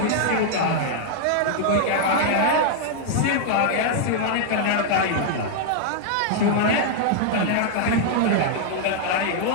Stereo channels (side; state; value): both; different; correlation -0.01